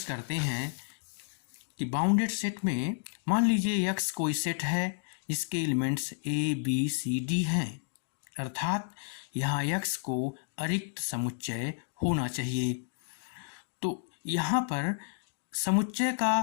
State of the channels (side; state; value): right; silent; digital silence